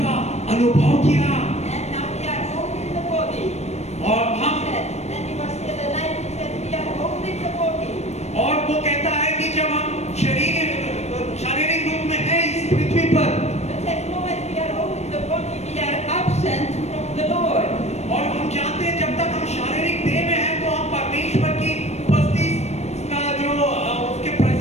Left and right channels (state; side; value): late; right; 0.32 ms